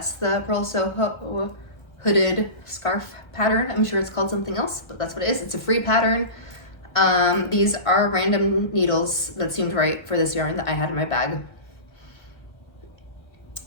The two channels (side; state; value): right; late; 1.3 ms